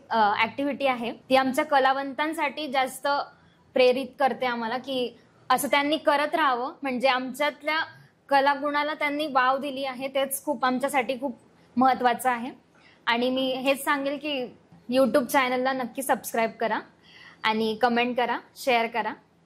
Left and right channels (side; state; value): both; identical; correlation 1.00